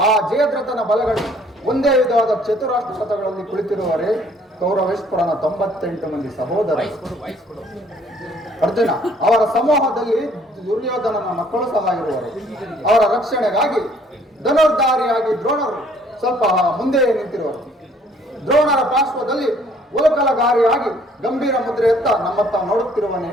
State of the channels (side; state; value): both; normal; correlation 0.60